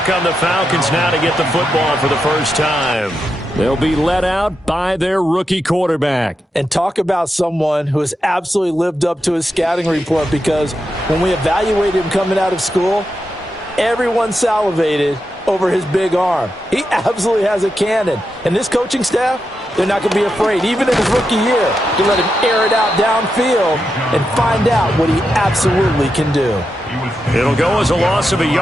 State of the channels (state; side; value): normal; both; correlation 0.87